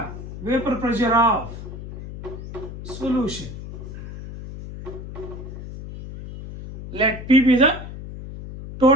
vapor pressure of solution. Let P be the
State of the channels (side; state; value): left; noise; hum, 11 dB below the sound